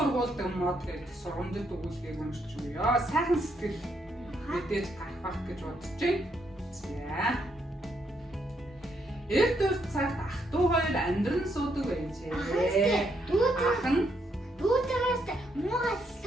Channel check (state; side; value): normal; both; correlation 0.75